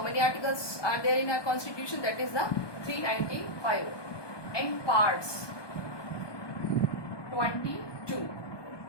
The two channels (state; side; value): late; right; 1.2 ms